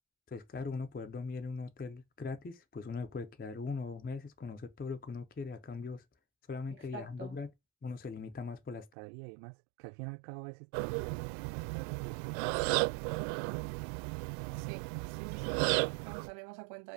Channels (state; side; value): drops out; left; at 8.9 s